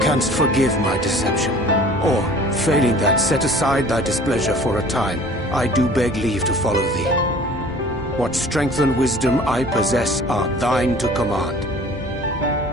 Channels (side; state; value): both; normal; correlation 0.47